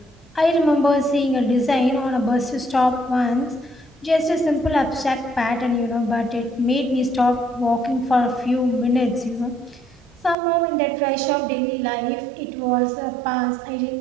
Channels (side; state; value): left; drops out; at 10.4 s